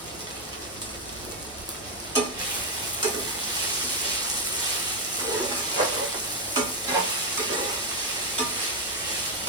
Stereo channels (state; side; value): normal; both; correlation 0.05